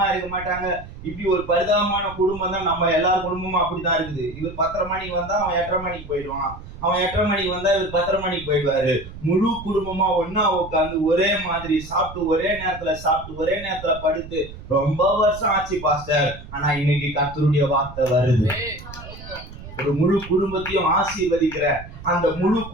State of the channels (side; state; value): right; noise; rumble, 14 dB below the sound